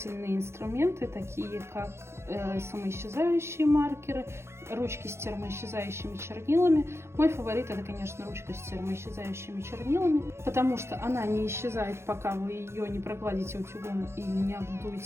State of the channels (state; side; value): late; left; 0.13 ms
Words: инструменты, такие как самоисчезающие маркеры, ручки с термоисчезающими чернилами. Мой фаворит — это, конечно, ручка с термоисчезающими чернилами, потому что она не исчезает, пока вы ее не прогладите утюгом или не